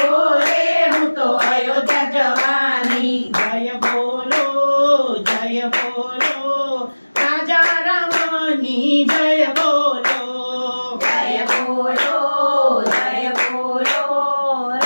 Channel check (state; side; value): inverted; both; correlation -1.00